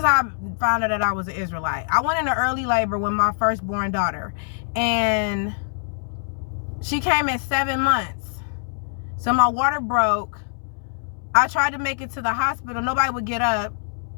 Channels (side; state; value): right; silent; 63 dB below the other